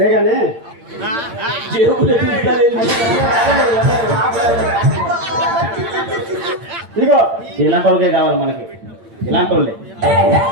ఇదిగో ఇలాంటి వాళ్ళకే కావాలి మనకి, ఇలాంటి వాళ్ళే.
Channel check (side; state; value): left; late; 8.8 ms